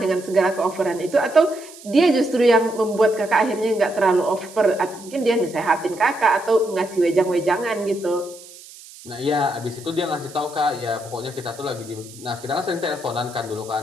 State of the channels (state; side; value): noise; right; hiss, 19 dB below the sound